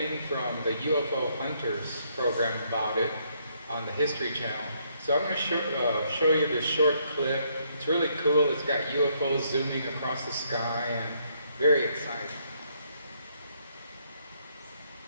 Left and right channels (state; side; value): inverted; both; correlation -0.71